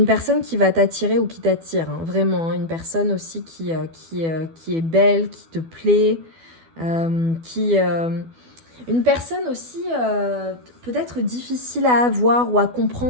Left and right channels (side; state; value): left; late; 12 ms